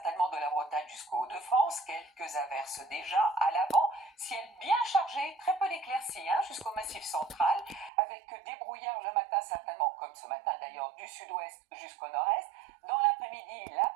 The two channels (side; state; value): left; drops out; at 7.9 s